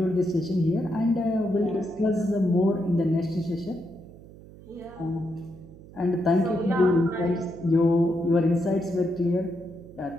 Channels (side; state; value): right; noise; hum, 20 dB below the sound